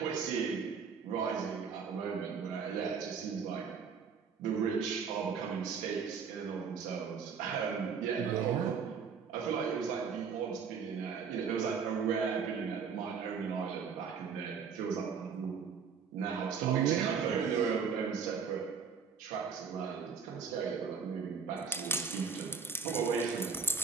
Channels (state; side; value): quieter; left; 6.1 dB